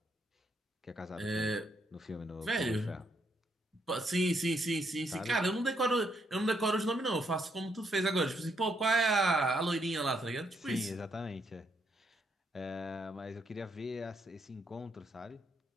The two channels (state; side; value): normal; both; correlation 0.75